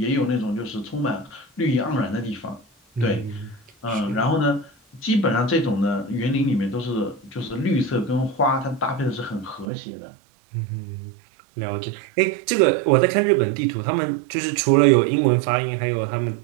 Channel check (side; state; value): left; drops out; at 9.7 s